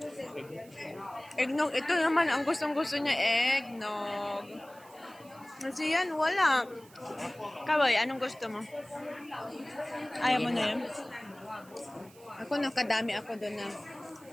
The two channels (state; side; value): noise; right; hiss, 25 dB below the sound